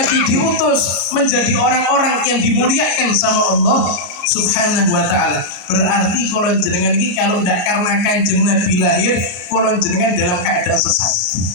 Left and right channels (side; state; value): right; late; 34 ms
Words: diutus menjadi orang-orang yang dimuliakan sama Allah Subhanahu wa taala. Berarti kalau jenengan ini kalau tidak karena Kanjeng Nabi lahir, kalau jenengan dalam keadaan sesat.